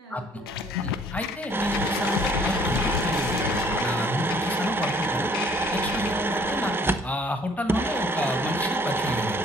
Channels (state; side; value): normal; both; correlation 0.59